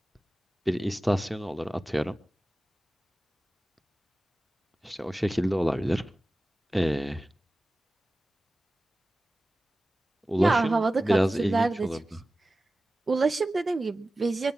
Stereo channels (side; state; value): both; normal; correlation 0.96